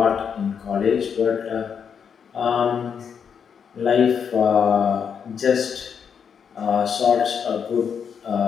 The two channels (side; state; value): right; quieter; 7.1 dB